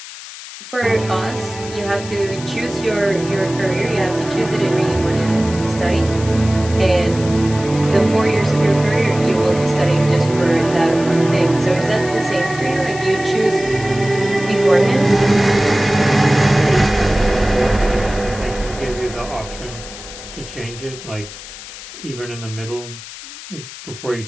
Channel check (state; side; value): noise; left; hiss, 14 dB below the sound